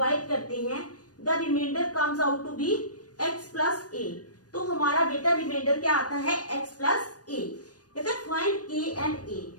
करते हैं, the remainder comes out to be x plus a. तो हमारा बेटा रिमाइंडर क्या आता है? x plus a. कहता है फाइंड k एंड a.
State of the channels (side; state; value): right; late; 0.68 ms